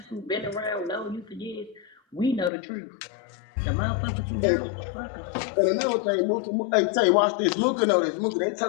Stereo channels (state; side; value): drops out; right; at 2.5 s